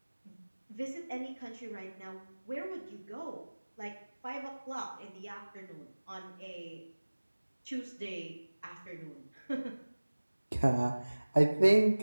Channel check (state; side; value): inverted; both; correlation -1.00